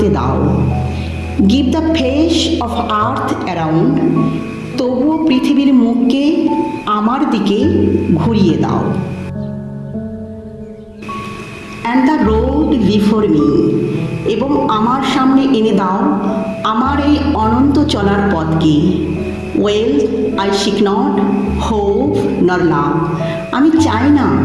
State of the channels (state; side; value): identical; both; correlation 1.00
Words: দাও। Give the face of earth around, তবুও পৃথিবীর মুখকে আমার দিকে ঘুরিয়ে দাও। And the road before me, এবং আমার সামনে এনে দাও আমার এই অনন্ত চলার পথকে। Well I seek not hope nor love, আমি চাই না